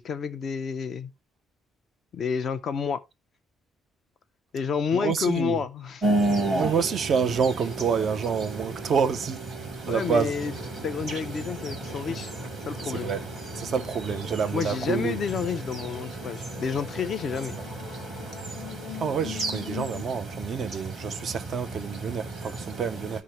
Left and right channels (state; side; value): normal; both; correlation 0.64